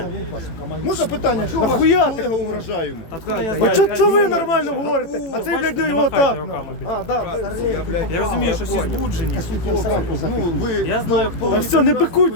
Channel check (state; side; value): late; right; 18 ms